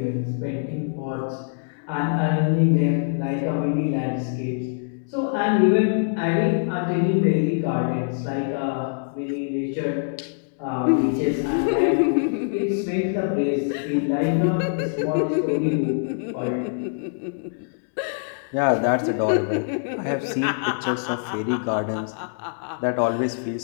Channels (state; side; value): silent; right; digital silence